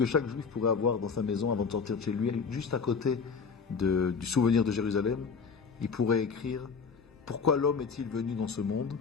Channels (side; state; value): right; quieter; 5.4 dB